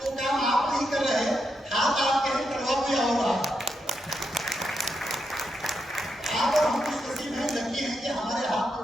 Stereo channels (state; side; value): normal; both; correlation 0.83